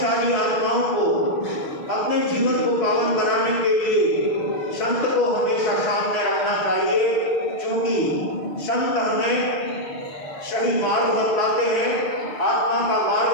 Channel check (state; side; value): late; right; 6.6 ms